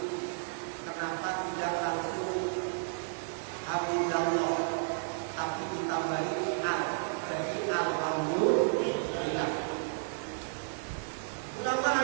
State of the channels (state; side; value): silent; left; 56 dB below the other